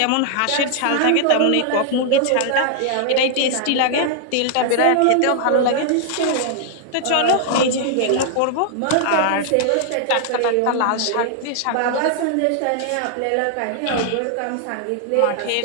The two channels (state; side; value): different; both; correlation -0.01